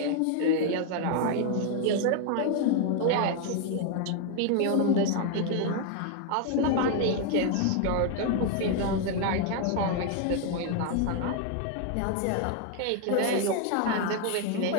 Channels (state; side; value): different; both; correlation 0.01